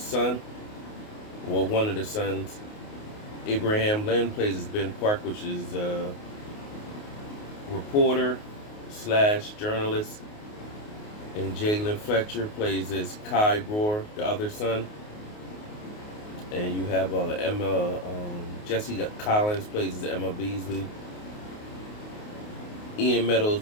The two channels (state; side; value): late; right; 28 ms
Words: or one of the sons. Abraham Lynn plays as Ben Park, which is a reporter slash journalist. And Jalen Fletcher plays as Kai Brewer, the other son. And you have Jesse Collins plays as Emma Beasley. Ian Meadows